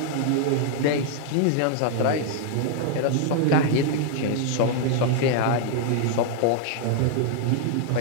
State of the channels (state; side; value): different; both; correlation 0.00